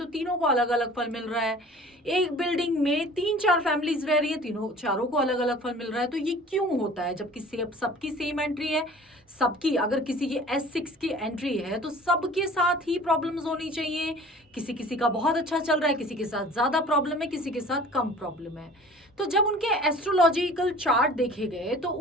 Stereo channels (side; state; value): both; normal; correlation 0.46